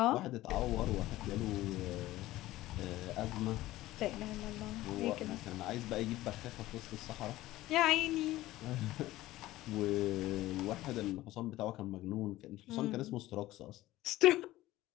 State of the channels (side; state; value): right; quieter; 16.5 dB